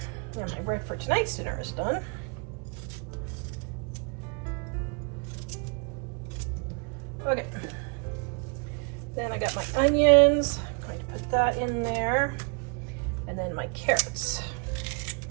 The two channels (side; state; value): left; quieter; 36.2 dB